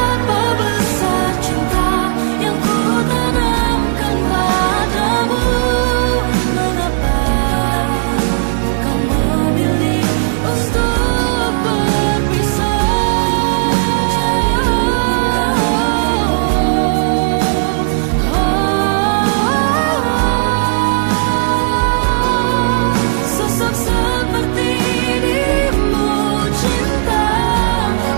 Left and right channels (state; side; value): silent; left; digital silence